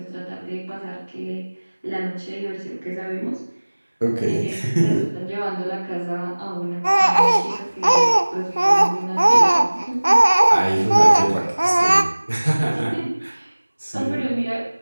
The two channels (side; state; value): both; inverted; correlation -1.00